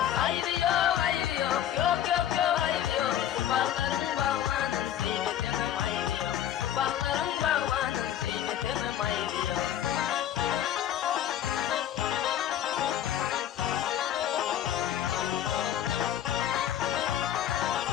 Ayvi yok, ayvi yok, yok yok yok ayvi yok. Bağların bağlanın, kıymetinim ayvi yok. Bağların bağlanın, kıymetinim ayvi yok.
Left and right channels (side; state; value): right; quieter; 10.9 dB